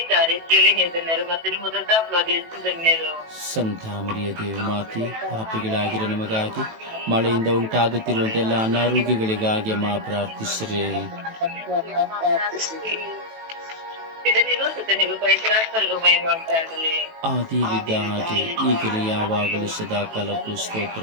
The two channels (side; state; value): left; late; 18 ms